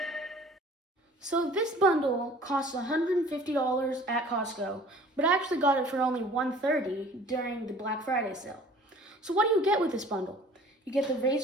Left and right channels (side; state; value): both; normal; correlation 0.49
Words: So this bundle costs $150 at Costco, but I actually got it for only $130 during the Black Friday sale. So what do you get with this bundle? You get the